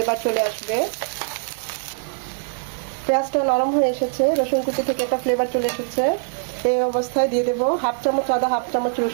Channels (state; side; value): silent; left; digital silence